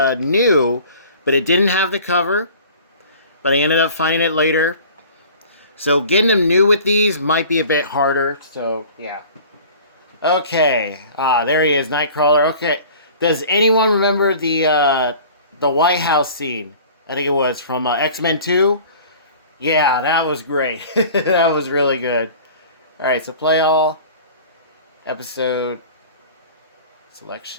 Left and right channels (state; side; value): inverted; both; correlation -0.44